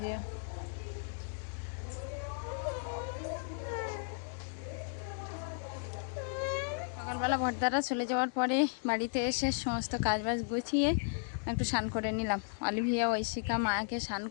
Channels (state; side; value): silent; right; digital silence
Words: যেও। সকালবেলা ভর্তারা চলে যাওয়ার পরে বাড়িতে এসে সমস্ত কাজবাজ গুছিয়ে একটু স্নান করে নিলাম। অলিভিয়া ঐশিকা মাকে স্নান